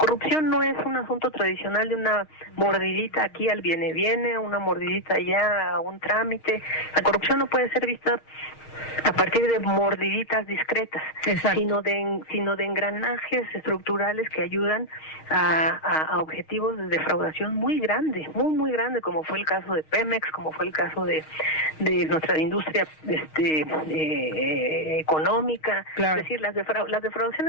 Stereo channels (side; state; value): right; late; 6.4 ms